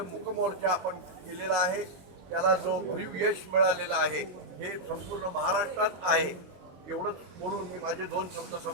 मूकमोर्चा आपण केलेला आहे, त्याला जो भरीव यश मिळालेलं आहे हे संपूर्ण महाराष्ट्रात आहे. एवढंच बोलून मी माझे 2 शब्द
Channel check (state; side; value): late; left; 22 ms